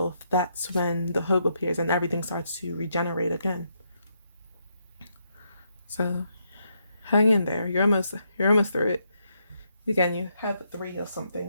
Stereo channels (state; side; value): inverted; both; correlation -0.78